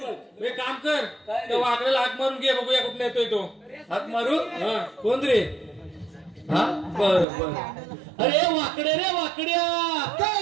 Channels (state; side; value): drops out; left; at 7.2 s